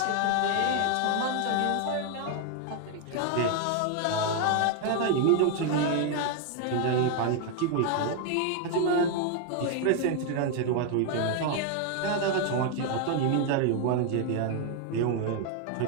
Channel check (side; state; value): both; different; correlation 0.01